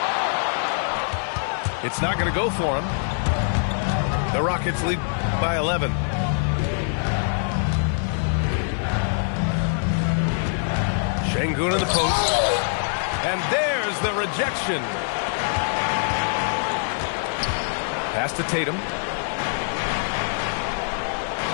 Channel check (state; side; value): silent; right; digital silence